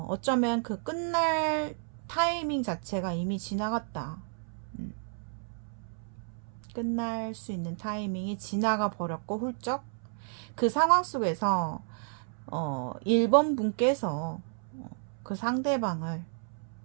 그 끝날 타이밍 자체가 이미 지나갔다. 끝날 수 있는 타이밍이 지나가 버렸고 훌쩍 그 상황 속에서 1번 분께서 그 상대방을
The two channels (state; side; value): silent; left; 57 dB below the other